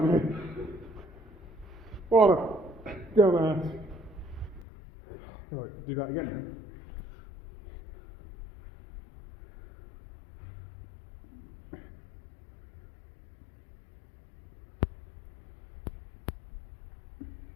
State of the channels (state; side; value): drops out; right; at 4.7 s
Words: me. What a dumbass. Right, do that again then.